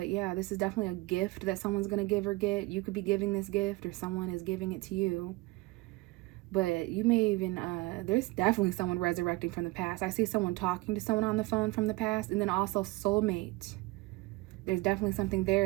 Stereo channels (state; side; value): quieter; left; 21.8 dB